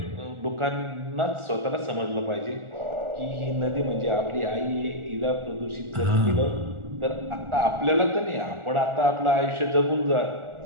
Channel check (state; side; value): late; left; 1.4 ms